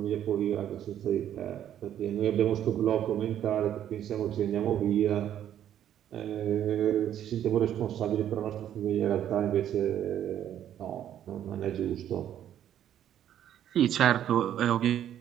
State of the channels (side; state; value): left; quieter; 10.7 dB